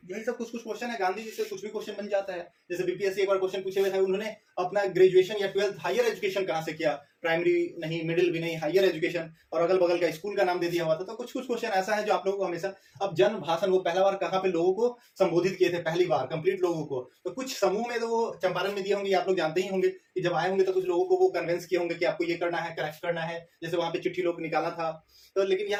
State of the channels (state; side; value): identical; both; correlation 1.00